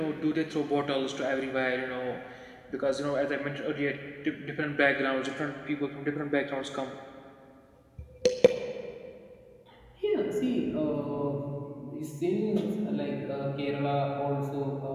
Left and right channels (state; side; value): identical; both; correlation 1.00